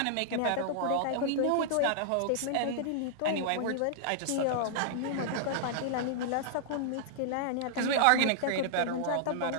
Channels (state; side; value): different; both; correlation -0.01